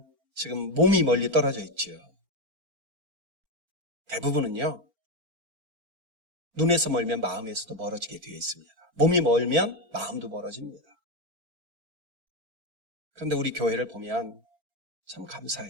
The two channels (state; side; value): late; left; 4.4 ms